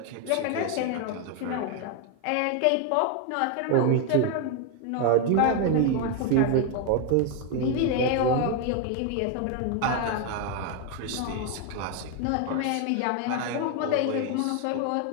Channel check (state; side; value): different; both; correlation 0.01